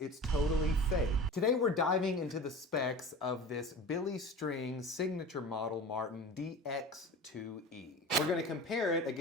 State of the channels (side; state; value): both; normal; correlation 0.35